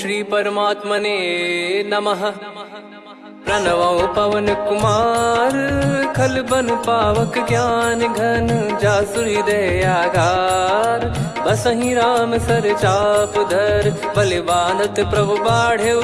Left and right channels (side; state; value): both; identical; correlation 1.00